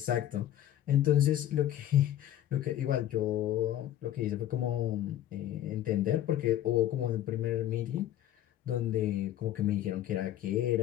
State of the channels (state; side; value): quieter; right; 12.2 dB